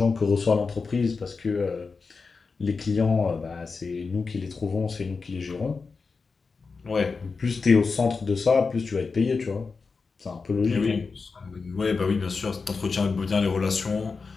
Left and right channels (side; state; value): right; quieter; 4.6 dB